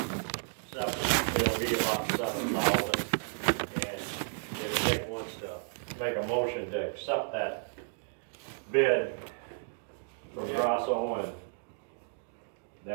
It'll be about $7,000. And if Nick wants to make a motion to accept that bid from Grasso and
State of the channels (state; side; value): silent; left; digital silence